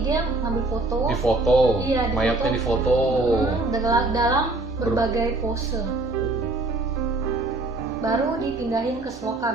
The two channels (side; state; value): left; quieter; 3.0 dB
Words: ngambil foto. Iya, mayatnya difoto. Dalam berbagai pose. Baru dipindahin ke